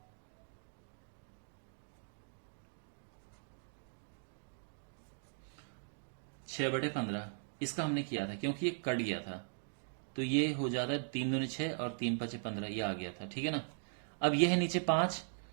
छह बटे 15, इसका हमने किया था क्योंकि ये कट गया था, तो ये हो जाता है 3 दूनी 6 और 3 पचे 15, ये आ गया था, ठीक है ना। अब ये है नीचे 5,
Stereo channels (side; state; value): left; silent; digital silence